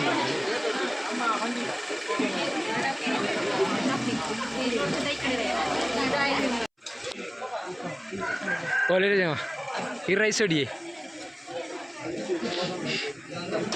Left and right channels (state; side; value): identical; both; correlation 1.00